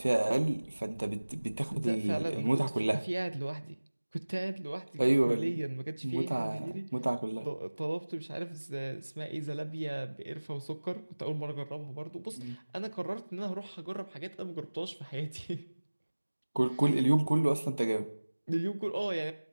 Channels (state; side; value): inverted; both; correlation -1.00